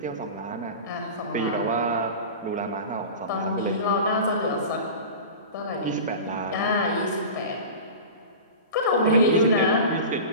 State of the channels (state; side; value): inverted; both; correlation -0.31